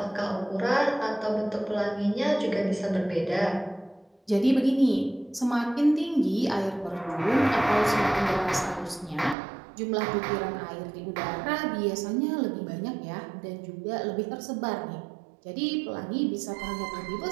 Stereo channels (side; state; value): left; drops out; at 9.3 s